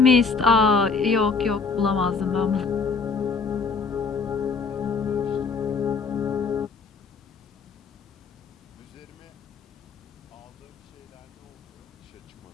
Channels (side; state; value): right; quieter; 4.9 dB